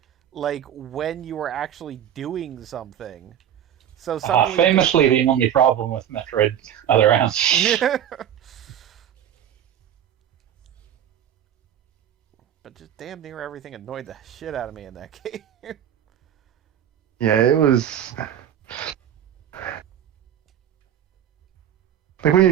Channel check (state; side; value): quieter; left; 10.1 dB